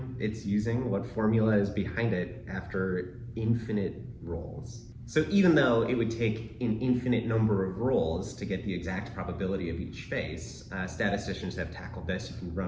it's using, what formula is behind it after infinite rolls. So even though it would take an infinite number of rolls to get the exact probability of each face, statisticians have tackled this. You can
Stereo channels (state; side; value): identical; both; correlation 1.00